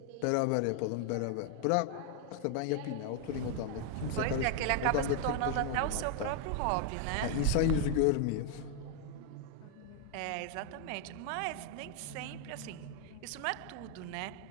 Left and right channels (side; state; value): both; different; correlation 0.00